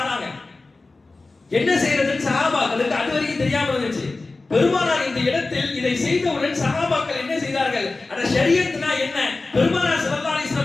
என்ன செய்யறதுன்னு சஹாபாக்களுக்கு அதுவரைக்கும் தெரியாம இருந்துச்சு. பெருமானார் இந்த இடத்தில் இதை செய்தவுடன் சஹாபாக்கள் என்ன செய்தார்கள், அட ஷரியத்னா என்ன, பெருமானார் ஸல்லல்லாஹு அலைஹி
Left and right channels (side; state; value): right; quieter; 3.4 dB